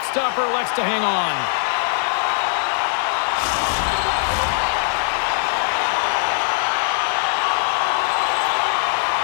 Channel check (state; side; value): silent; right; digital silence